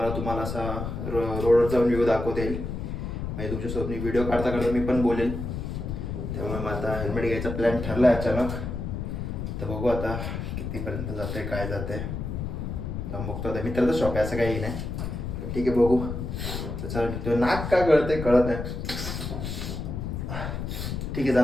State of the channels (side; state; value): left; noise; rumble, 4 dB below the sound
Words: तुम्हाला असा रोडवर जाऊन व्ह्यू दाखवता येईल, म्हणजे तुमच्यासोबत मी व्हिडिओ काढता काढता मी पण बोलेल. त्यामुळे मग आता हेल्मेट घ्यायचा प्लॅन ठरला आहे अचानक. तर बघू आता कितीपर्यंत जाते, काय जाते. जाऊन बघतो. आता मित्राचं शॉप आहे, असं काही नाही. तर ठीक आहे, बघू. तर चला निघतो. नाक का गळते कळत नाही. ठीक आहे,